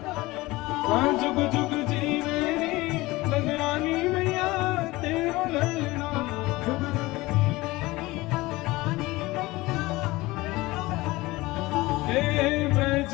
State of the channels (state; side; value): quieter; right; 20.3 dB